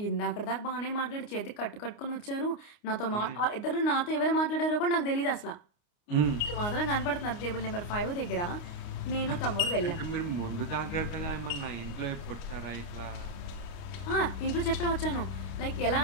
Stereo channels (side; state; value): right; late; 29 ms